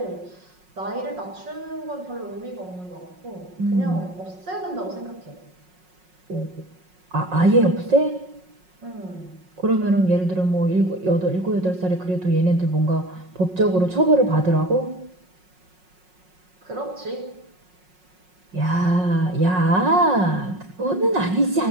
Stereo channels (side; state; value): left; late; 5.5 ms